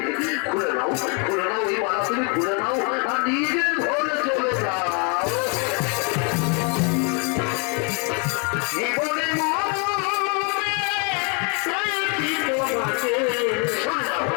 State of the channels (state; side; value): quieter; right; 34.4 dB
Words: খুলে নাও এই মালা, তুমি খুলে নাও আর নিজের ঘরে চলে যাও।